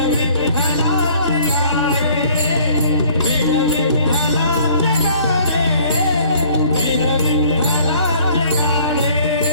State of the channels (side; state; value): both; inverted; correlation -0.56